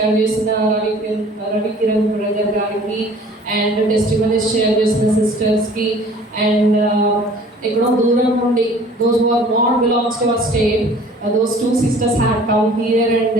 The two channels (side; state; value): both; normal; correlation 0.50